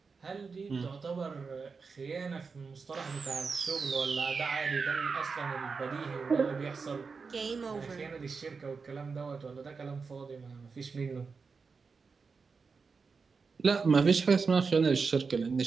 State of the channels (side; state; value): left; quieter; 4.9 dB